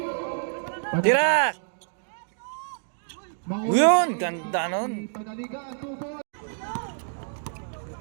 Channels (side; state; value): left; silent; digital silence